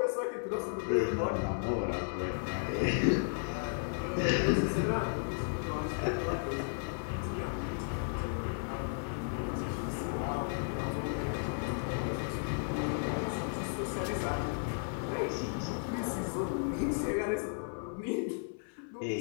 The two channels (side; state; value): right; silent; 55 dB below the other